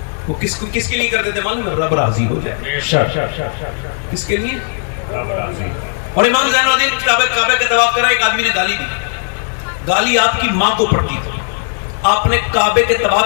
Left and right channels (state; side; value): silent; right; digital silence